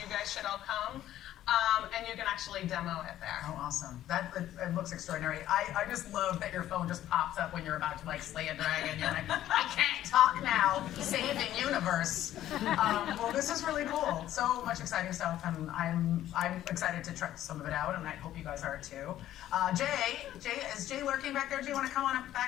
guys should all come. And you can actually demo it there. Oh, awesome. It looks extraordinary. I just love that your phone just pops up when you're about to like slay a dragon. You're like, I can't talk now. Saving universe. Well, this is really cool. So much exciting stuff, and I'm excited to try some of it out, and I hope you guys are too. Is Jay lurking back there? Do you want to come on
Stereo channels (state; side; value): quieter; right; 12.8 dB